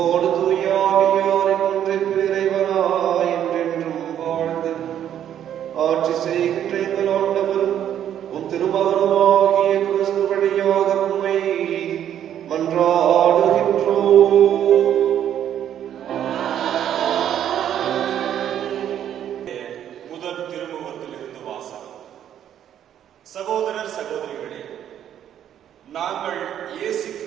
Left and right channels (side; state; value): left; quieter; 10.2 dB